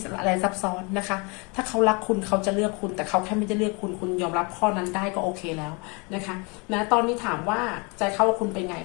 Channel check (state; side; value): quieter; right; 30.7 dB